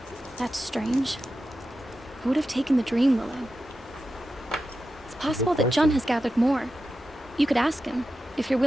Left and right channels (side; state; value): both; normal; correlation 0.91